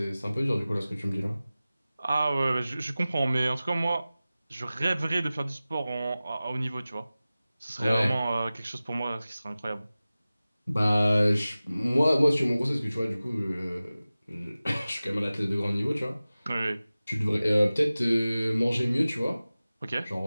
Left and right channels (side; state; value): both; inverted; correlation -0.97